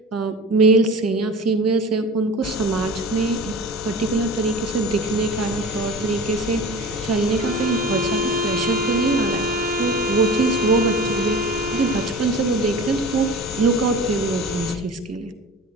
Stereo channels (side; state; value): both; normal; correlation 0.36